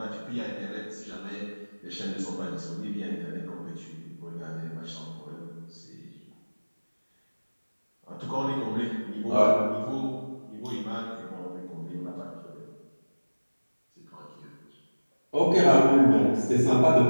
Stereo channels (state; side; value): inverted; both; correlation -1.00